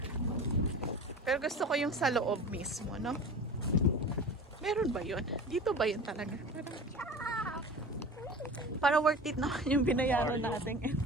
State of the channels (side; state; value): both; normal; correlation 0.36